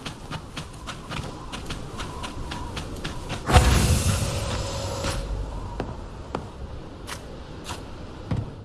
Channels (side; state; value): both; identical; correlation 1.00